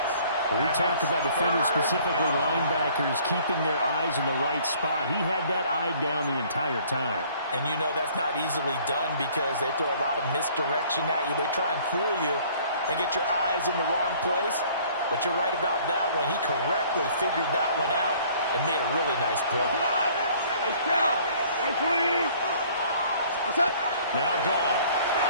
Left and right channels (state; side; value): inverted; both; correlation -0.56